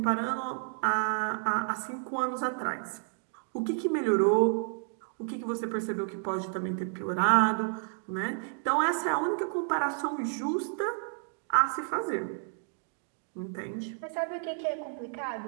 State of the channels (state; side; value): silent; left; 57 dB below the other